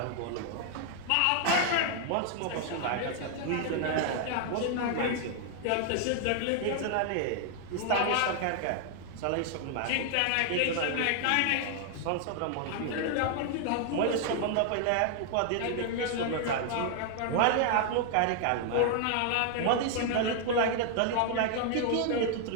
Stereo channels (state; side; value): different; both; correlation 0.00